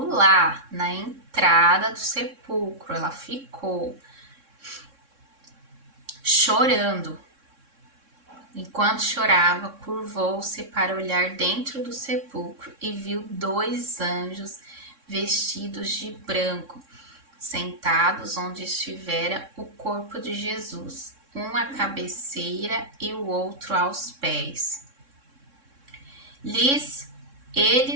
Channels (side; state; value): left; late; 3.6 ms